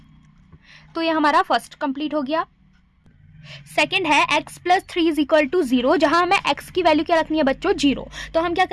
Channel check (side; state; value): both; identical; correlation 1.00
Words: तो ये हमारा फर्स्ट कंप्लीट हो गया। सेकेंड है x plus 3 is equal to 0, जहां हमें x की वैल्यू क्या रखनी है बच्चों, 0। तो हम क्या